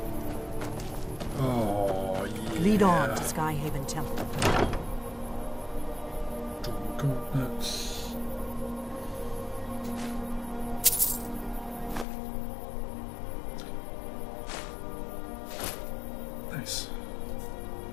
Oh, yeah. Lead on to Skyhaven Temple. Gauntlets. Nice.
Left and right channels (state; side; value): drops out; right; at 12.1 s